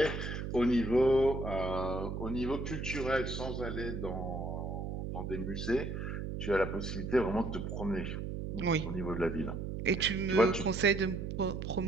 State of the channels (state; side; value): noise; right; hum, 4 dB below the sound